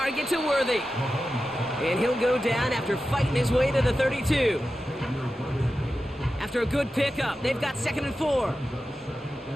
to Worthy. And he'll go down after fighting his way to the 32. After a good pickup, they've got 2nd and 4.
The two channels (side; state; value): both; normal; correlation 0.92